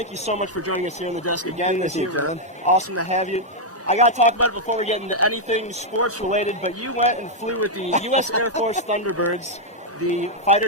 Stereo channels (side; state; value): both; normal; correlation -0.02